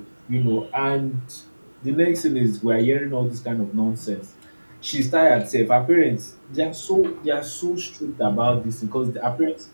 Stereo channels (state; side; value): inverted; both; correlation -1.00